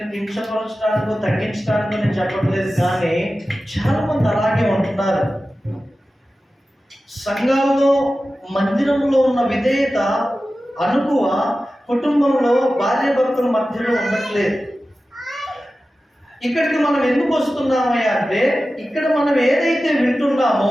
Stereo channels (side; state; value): both; normal; correlation 0.94